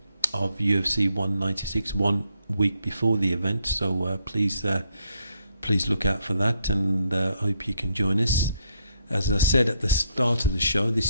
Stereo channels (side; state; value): both; inverted; correlation -0.75